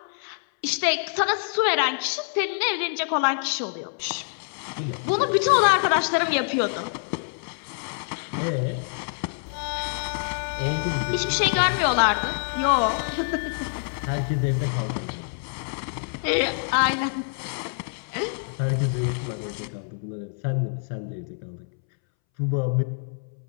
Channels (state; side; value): silent; right; 61 dB below the other